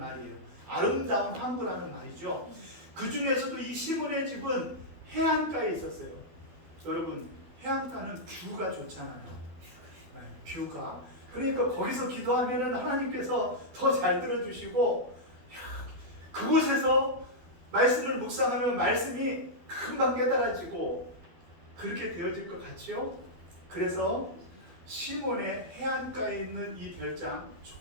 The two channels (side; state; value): left; late; 12 ms